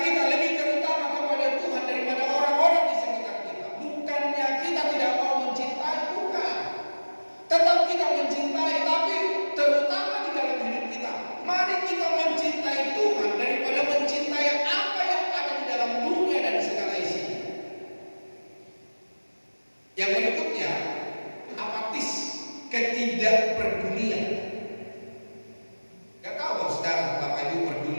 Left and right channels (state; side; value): inverted; both; correlation -1.00